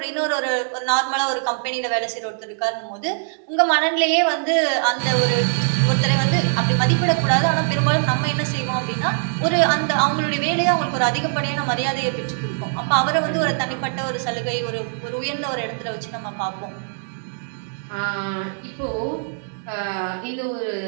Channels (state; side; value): silent; left; digital silence